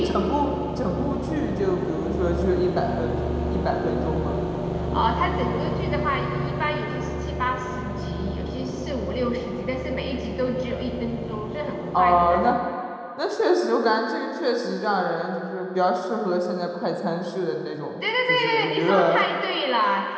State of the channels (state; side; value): identical; both; correlation 1.00